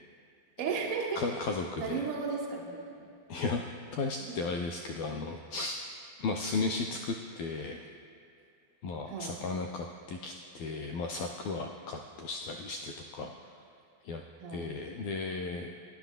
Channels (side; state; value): right; late; 12 ms